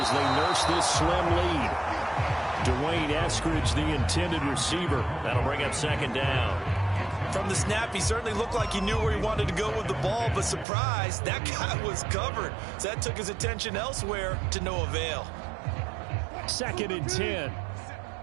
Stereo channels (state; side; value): drops out; left; at 10.7 s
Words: they nurse this slim lead. Dwayne Eskridge, the intended receiver. That'll bring up second down. From the snap, he certainly looked like he knew where he wanted to go with the ball, but surprise, that guy was covered. So that took his attention elsewhere to no avail. 2nd and 10.